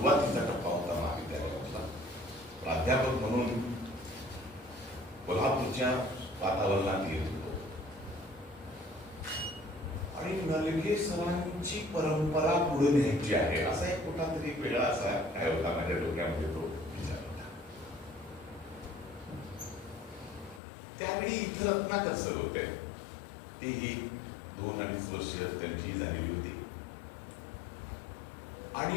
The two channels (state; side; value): drops out; right; at 20.6 s